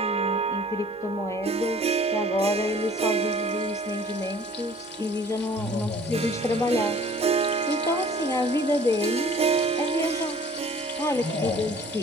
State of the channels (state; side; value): normal; both; correlation 0.51